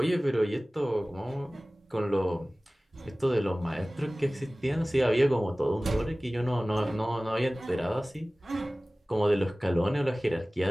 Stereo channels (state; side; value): normal; both; correlation 0.98